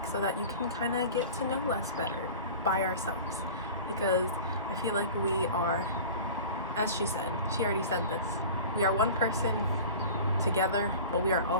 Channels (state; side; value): inverted; both; correlation -0.38